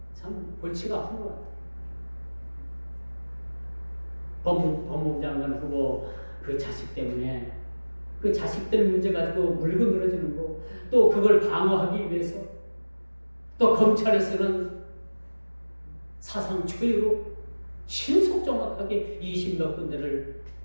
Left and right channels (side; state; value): both; inverted; correlation -1.00